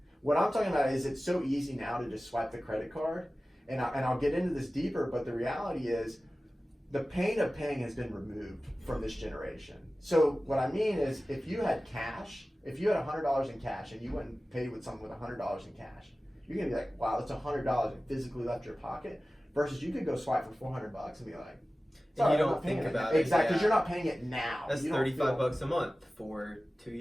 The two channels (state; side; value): normal; both; correlation 0.96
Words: What I'm talking about is, it's so easy now to just swipe the credit card. And I'll get into this deeper, but the reality is, the pain of paying has been removed from this generation. So what I mean is, if you had cash, if you had $100 in cash and you went and paid with someone with $100 in cash, you're gonna be like, wow, that's $100 that physically left your pocket. Versus you could go swipe for $400 and be like, and you don't think about it. Exactly, because you're not paying it now. That's $35 a month for 2